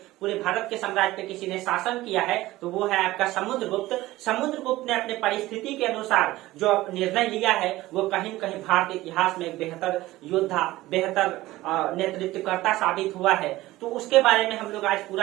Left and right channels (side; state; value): left; quieter; 17.4 dB